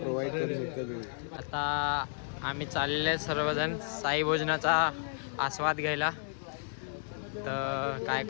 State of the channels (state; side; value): silent; right; digital silence